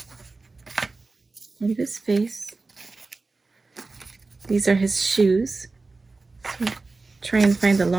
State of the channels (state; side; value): quieter; left; 3.7 dB